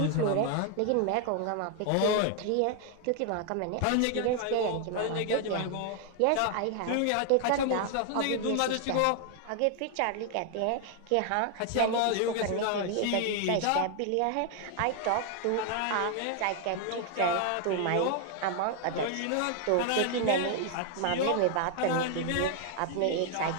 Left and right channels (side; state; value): both; different; correlation 0.00